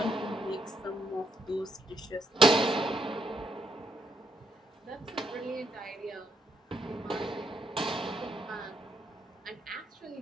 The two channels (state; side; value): normal; both; correlation 0.75